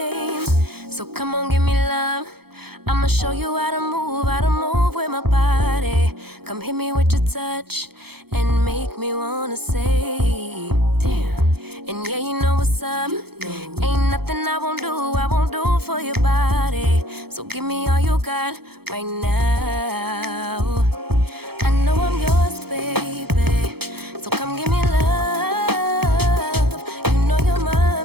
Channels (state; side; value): late; left; 0.96 ms